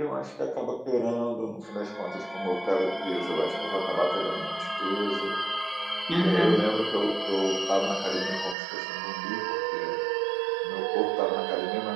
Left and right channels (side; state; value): left; drops out; at 8.6 s